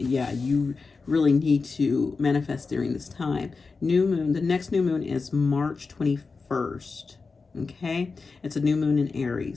really need to manifest during this time. New moon, the next new moon is March 21st. Okay, it's a new moon in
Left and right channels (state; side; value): quieter; right; 4.4 dB